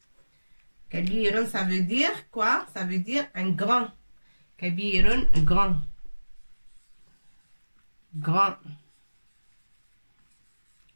Kabirun, ça veut dire quoi? Ça veut dire un grand. Kabirun, grand. Grand.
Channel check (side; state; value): both; inverted; correlation -1.00